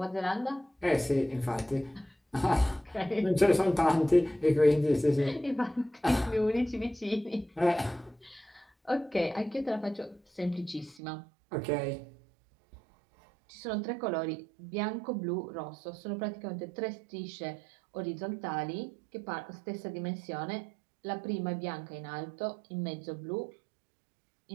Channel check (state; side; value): drops out; left; at 11.0 s